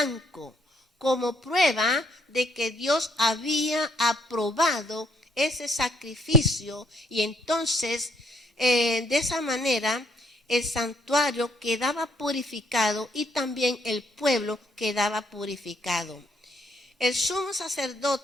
como prueba de que Dios había aprobado ese sacrificio, y entonces de esa manera el santuario quedaba purificado y también el pueblo quedaba purificado. El sumo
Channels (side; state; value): both; normal; correlation 0.68